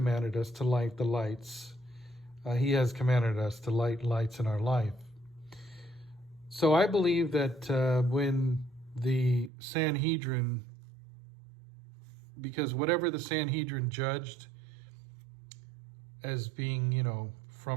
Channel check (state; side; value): drops out; left; at 9.5 s